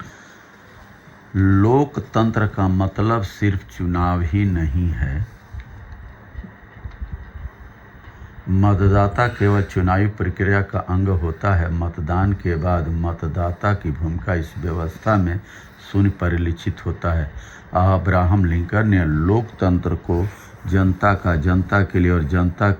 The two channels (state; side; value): identical; both; correlation 1.00